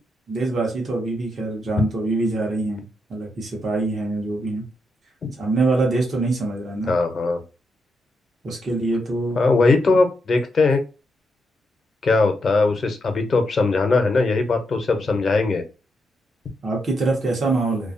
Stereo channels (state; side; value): normal; both; correlation 0.82